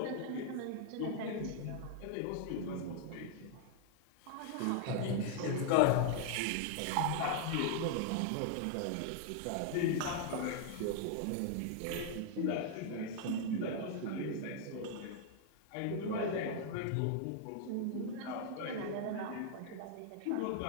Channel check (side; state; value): both; different; correlation 0.00